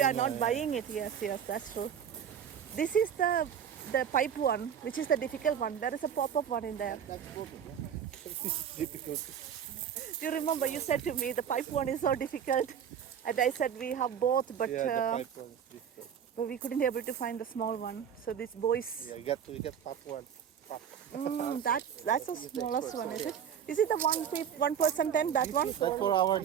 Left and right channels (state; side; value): quieter; left; 8.4 dB